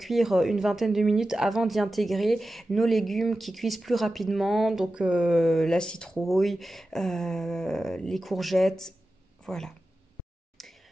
une vingtaine de minutes avant d'y intégrer nos légumes qui cuisent plus rapidement, donc la citrouille, les courgettes, voilà.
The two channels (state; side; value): normal; both; correlation 0.93